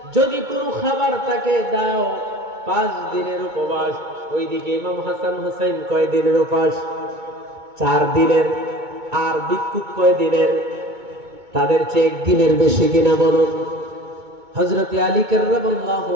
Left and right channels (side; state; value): left; late; 2.2 ms